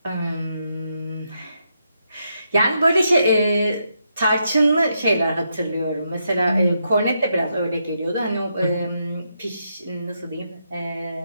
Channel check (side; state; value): both; inverted; correlation -0.81